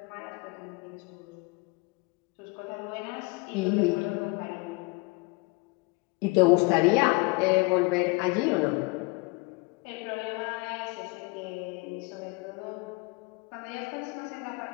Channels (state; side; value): quieter; right; 26.5 dB